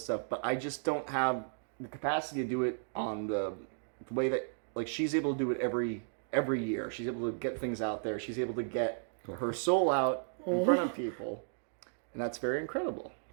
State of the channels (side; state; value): left; silent; digital silence